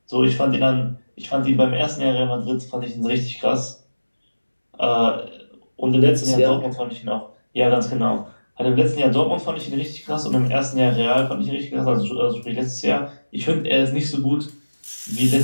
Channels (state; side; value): inverted; both; correlation -1.00